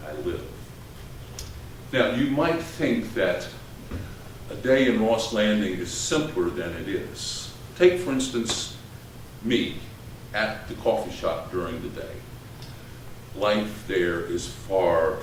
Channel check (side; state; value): both; identical; correlation 1.00